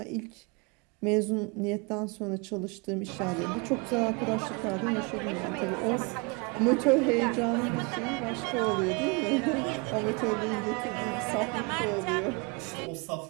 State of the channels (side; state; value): left; quieter; 30.3 dB